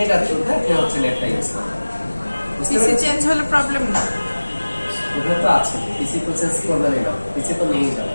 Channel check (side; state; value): both; inverted; correlation -1.00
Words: এটা থ্রুতে আপনি হচ্ছে নেটটা ইউজ করবেন। পিসি চেঞ্জ হলে প্রবলেম না? ওটা তো আছে, পিসি তো চেঞ্জ করবেনই না, পিসি তো নিয়েই